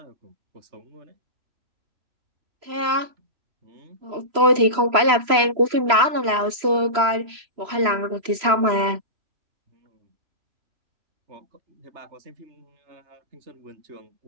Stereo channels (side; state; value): left; late; 3.0 ms